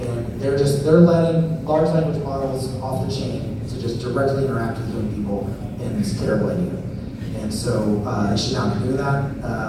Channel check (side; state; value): both; identical; correlation 1.00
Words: they're letting large language models off the chain to just directly interact with young people, and it's a terrible idea. And so they should not be doing that,